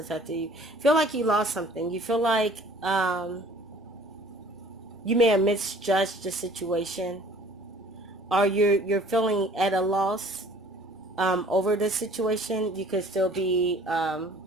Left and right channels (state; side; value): normal; both; correlation 0.52